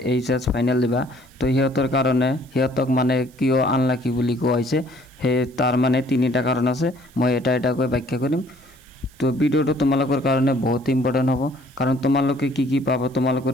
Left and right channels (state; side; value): noise; right; hiss, 28 dB below the sound